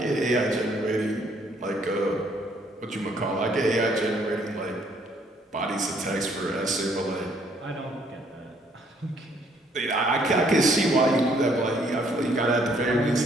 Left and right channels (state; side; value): normal; both; correlation 0.65